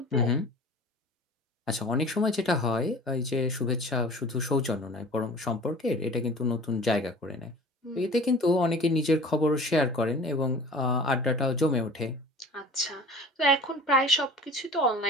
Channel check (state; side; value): normal; both; correlation 0.43